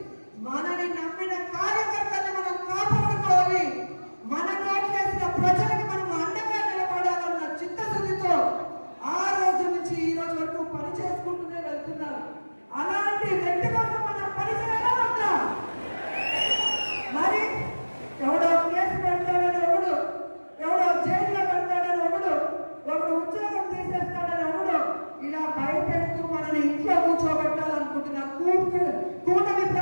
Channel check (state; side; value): inverted; both; correlation -1.00